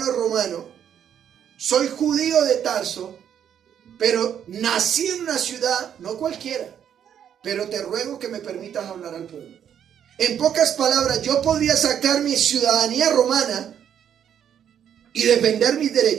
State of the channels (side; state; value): left; quieter; 9.1 dB